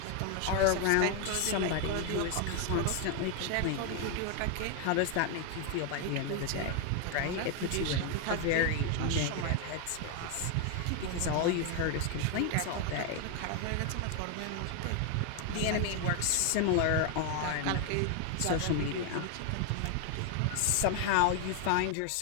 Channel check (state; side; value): different; both; correlation 0.01